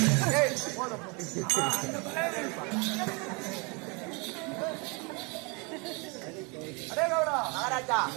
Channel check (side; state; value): left; quieter; 30.8 dB